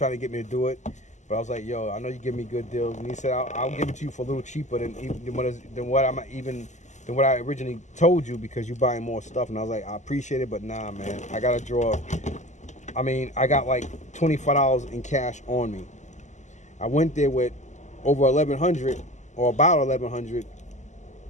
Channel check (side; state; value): right; late; 0.34 ms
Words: to get me to do it, but I was like, yo, I know you give me good deals. And he said, I'll give it to you for a little cheaper than what I originally told you because you're buying more stuff. And I was like, I appreciate it, but nah, man. I got to draw. I got like $25 in cash on me. I went there with over $1,100 or about $1,100.